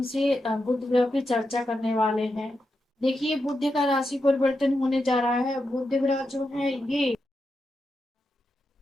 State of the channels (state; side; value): normal; both; correlation 0.87